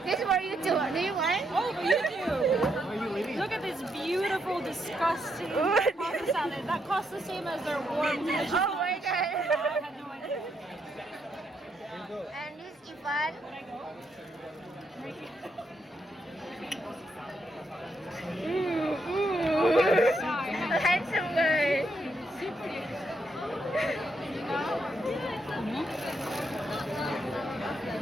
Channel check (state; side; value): normal; both; correlation 0.78